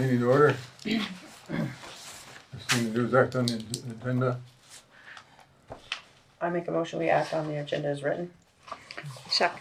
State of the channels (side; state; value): both; identical; correlation 1.00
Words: to order. First thing to do is act on the agenda. I make a motion we act on the agenda as written.